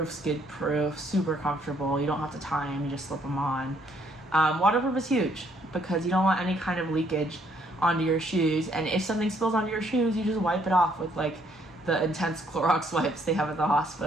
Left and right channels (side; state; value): both; normal; correlation 0.67